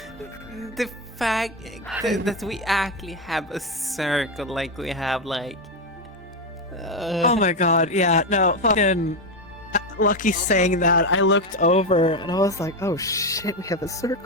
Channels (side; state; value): both; normal; correlation 0.10